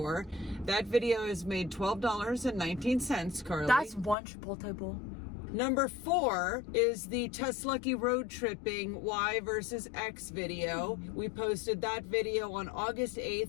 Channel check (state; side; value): drops out; right; at 4.2 s